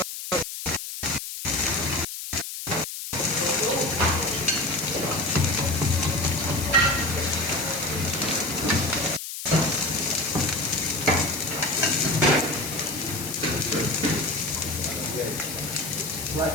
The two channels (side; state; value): left; noise; hiss, 7 dB below the sound